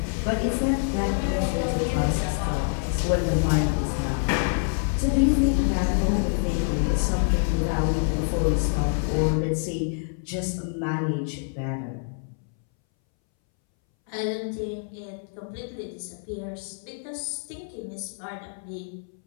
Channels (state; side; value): silent; right; 61 dB below the other